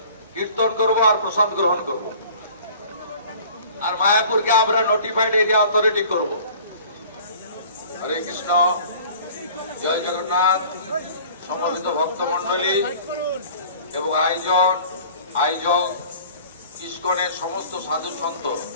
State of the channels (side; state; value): both; inverted; correlation -0.47